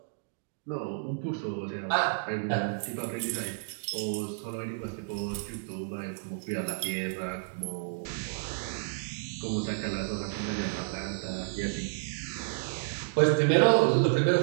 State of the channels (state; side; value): silent; left; digital silence